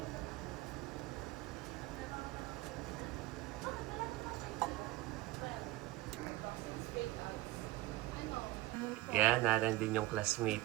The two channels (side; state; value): left; quieter; 17.8 dB